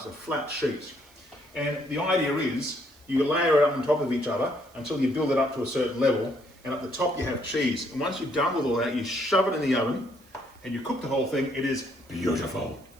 flat sheets. And the idea is you layer it up on top of each other until you build it up to a certain level, and at the top you have cheese. And once you're done with all that, you shove it in the oven and you cook the whole thing. It is beautiful.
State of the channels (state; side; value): noise; right; hiss, 29 dB below the sound